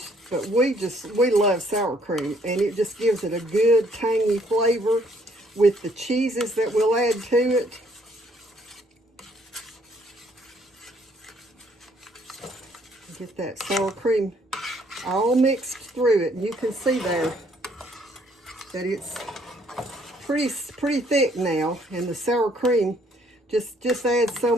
but we love sour cream, and it just gives it a good tangy flavor with the cheeses that we'll add to it. Get that sour cream all mixed through it, and you can see there that it's pretty thick now, and the sour cream just adds so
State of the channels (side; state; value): both; normal; correlation 0.65